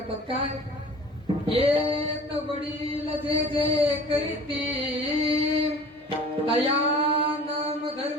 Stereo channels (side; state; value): both; normal; correlation 0.44